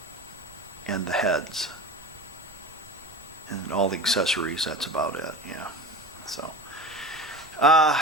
and the heads and all the accessories. That's about it. Yeah. So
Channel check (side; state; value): right; noise; rumble, 24 dB below the sound